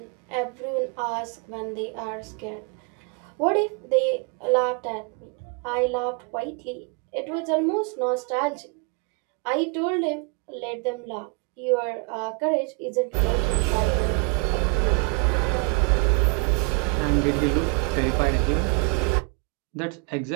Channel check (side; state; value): left; quieter; 31.7 dB